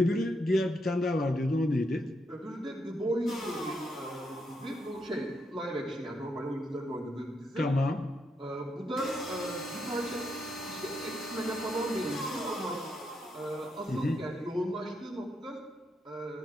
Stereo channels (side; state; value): both; normal; correlation 0.80